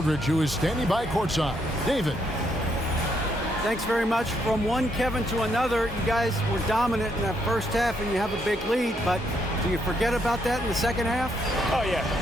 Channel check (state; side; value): normal; both; correlation 0.75